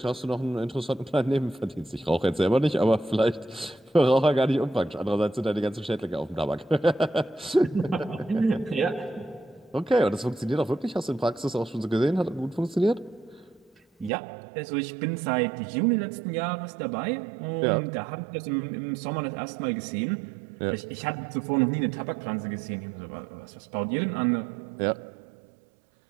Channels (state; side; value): drops out; left; at 14.1 s